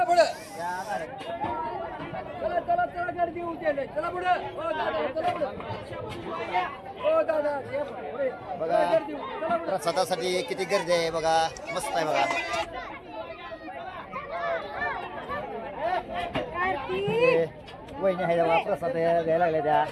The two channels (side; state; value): both; identical; correlation 1.00